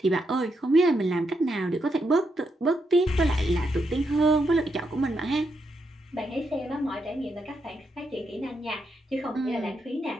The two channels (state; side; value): normal; both; correlation 0.81